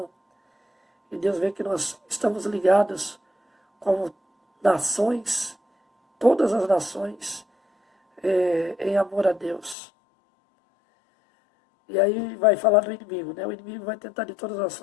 E Deus vê que nós estamos ligados como nações, todas as nações, em amor a Deus. E aí vai falar do inimigo, né? O inimigo vai tentar de todas as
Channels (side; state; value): right; drops out; at 9.8 s